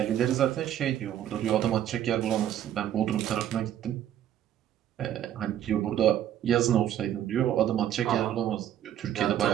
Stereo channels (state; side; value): quieter; left; 11.1 dB